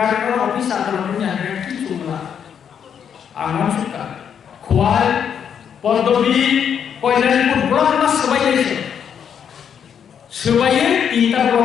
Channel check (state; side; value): quieter; right; 8.0 dB